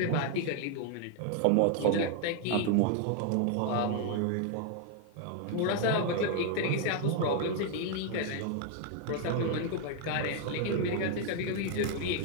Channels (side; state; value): both; different; correlation 0.00